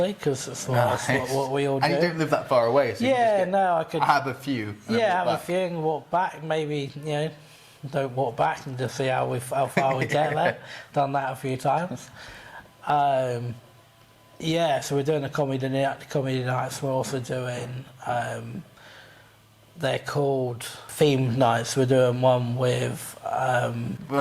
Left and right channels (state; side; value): identical; both; correlation 1.00